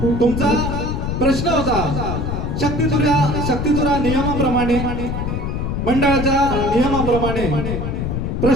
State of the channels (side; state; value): left; noise; rumble, 2 dB below the sound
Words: तुमचा प्रश्न होता शक्तितुरा नियमाप्रमाणे, मंडळाच्या नियमाप्रमाणे